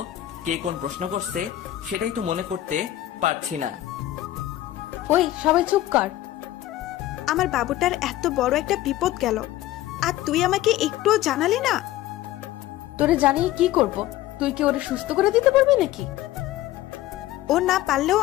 কে কোন প্রশ্ন করছে সেটাই তো মনে করতে পারছি না। ওই সবাই চুপ কর। আমার বাবুটার এত বড় একটা বিপদ গেল, আর তুই আমাকে একটুও জানালি না। তোরে জানিয়ে কি করব? তুই কি ওরে সুস্থ করে দিতে পারবি নাকি? ও না পারলেও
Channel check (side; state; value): right; quieter; 14.5 dB